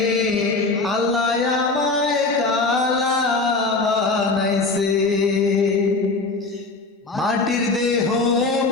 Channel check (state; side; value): quieter; right; 3.6 dB